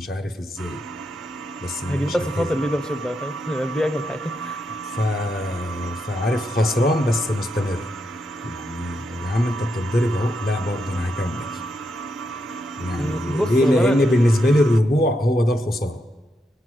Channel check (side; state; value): both; normal; correlation 0.82